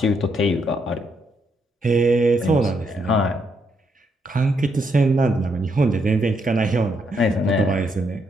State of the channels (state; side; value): normal; both; correlation 0.76